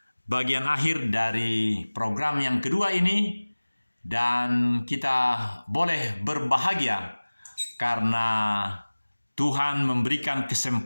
bagian akhir dari program yang kedua ini. Dan kita boleh berbahagia karena Tuhan memberikan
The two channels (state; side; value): inverted; both; correlation -1.00